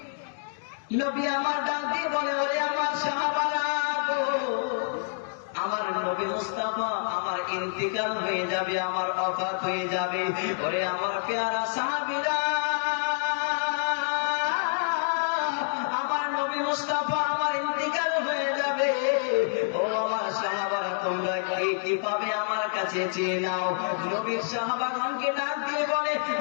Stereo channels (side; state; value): right; silent; digital silence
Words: নবী আমার ডাক দিয়ে বলে, ওরে আমার সাহাবারা গো, আমার নবী মুস্তাফা আমার ইন্তিকাল হয়ে যাবে, আমার ওফাত হয়ে যাবে। ওরে আমার পেয়ারা সাহাবীরা, আমার নবী মুস্তাফা আমার ইন্তিকাল হয়ে যাবে। ও আমার সাহাবারা, তোমরা কি পাবে আমার কাছে চেয়ে নাও। নবীর সাহাবাগণকে ডাক দিয়ে বলে,